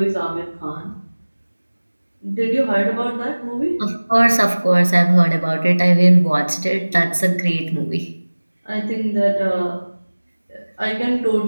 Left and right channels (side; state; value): both; inverted; correlation -1.00